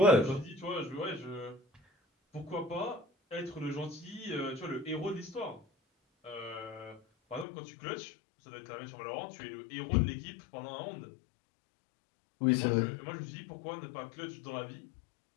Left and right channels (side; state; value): right; drops out; at 7.5 s